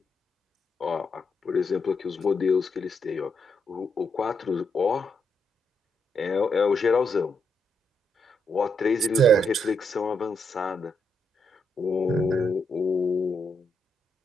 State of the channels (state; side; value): normal; both; correlation 0.79